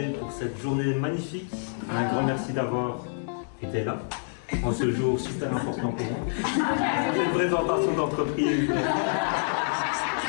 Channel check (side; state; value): right; silent; 60 dB below the other